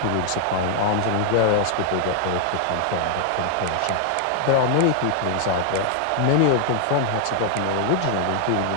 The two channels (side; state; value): both; different; correlation 0.00